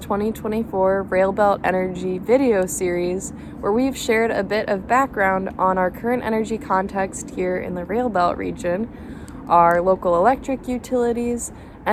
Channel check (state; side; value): identical; both; correlation 1.00